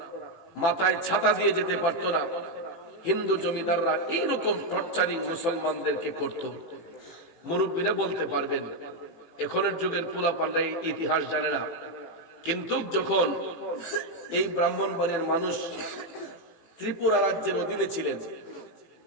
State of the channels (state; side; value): late; right; 18 ms